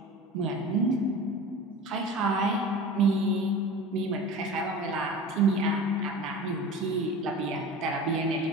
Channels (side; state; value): both; normal; correlation 0.35